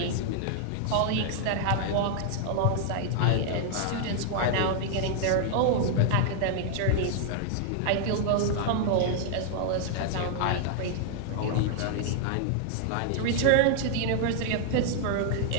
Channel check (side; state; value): both; different; correlation -0.01